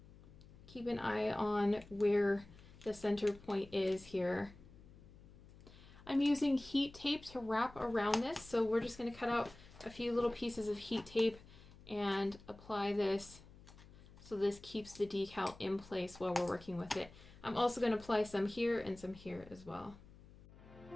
keep an eye on where the center point is here. I'm using heat tape to wrap around this, so we're just going to cut out a few little pieces of heat tape and apply this so this keeps the decal in place while we're working with it. I'm also going to apply some here and some here as well.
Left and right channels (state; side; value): noise; left; hum, 21 dB below the sound